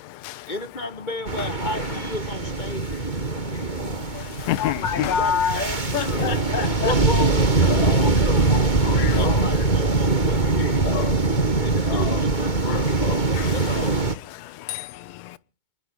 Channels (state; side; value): late; right; 2.2 ms